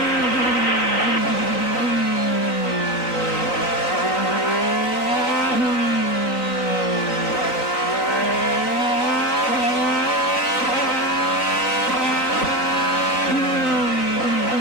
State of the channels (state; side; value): late; right; 3.9 ms